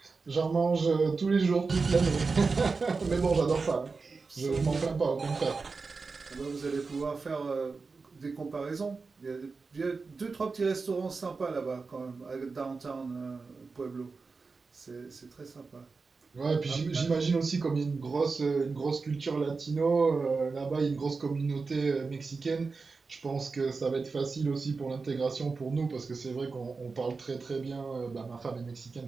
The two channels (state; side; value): quieter; left; 4.4 dB